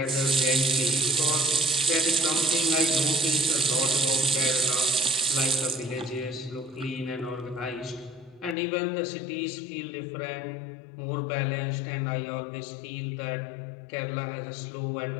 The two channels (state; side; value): drops out; right; at 8.6 s